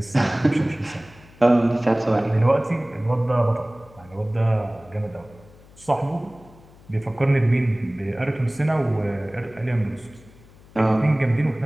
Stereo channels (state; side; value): noise; left; hum, 25 dB below the sound